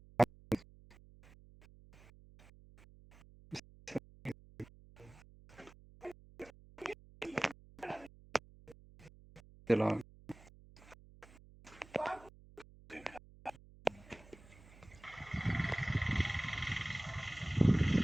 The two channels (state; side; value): noise; right; hum, 22 dB below the sound